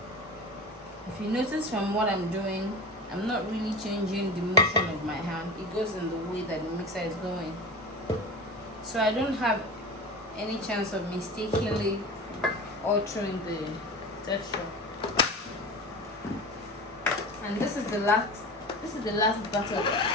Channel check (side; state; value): both; normal; correlation 0.31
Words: If you notice from what I'm doing, I'm not really changing the motion of my hand. It goes in the way that the mixer is going. So I don't have any chance of mistakenly altering the texture. And this is the last batter.